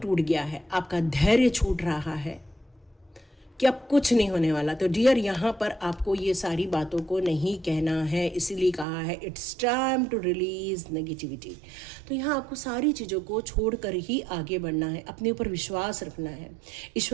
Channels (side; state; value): left; drops out; at 8.8 s